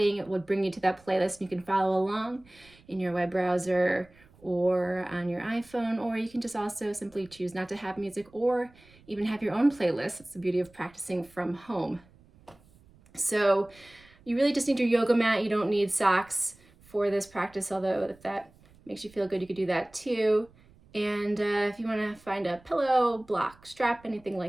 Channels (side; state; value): right; noise; rumble, 28 dB below the sound